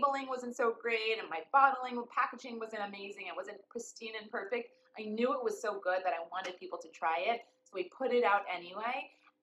wasn't so great and my packaging wasn't amazing, it wasn't pristine and perfect, I knew it was so good that I wanted people to try it. So we put it out anyway,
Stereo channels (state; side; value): identical; both; correlation 1.00